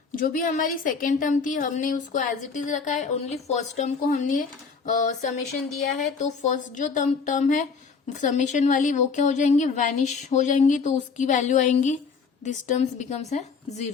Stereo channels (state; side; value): quieter; right; 5.2 dB